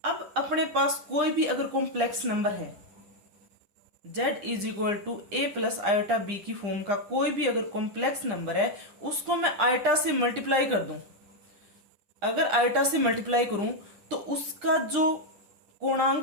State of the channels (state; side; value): late; left; 9.9 ms